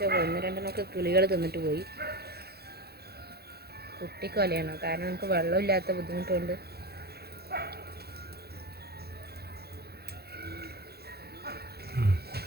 ഒന്ന് രണ്ടെണ്ണമൊക്കെ കിളികൾ തിന്നിട്ട് പോയി. കുട്ടിക്കൊലയാണ്, കാരണം നമുക്ക് വെള്ളമില്ലാത്ത ബുദ്ധിമുട്ടുണ്ട്.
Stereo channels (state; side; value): late; left; 0.46 ms